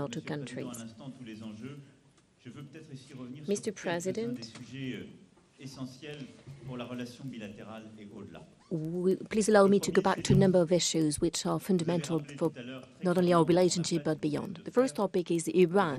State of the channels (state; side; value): identical; both; correlation 1.00